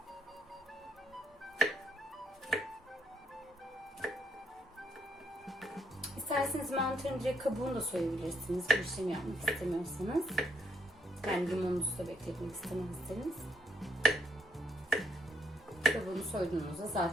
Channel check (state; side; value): normal; both; correlation 0.75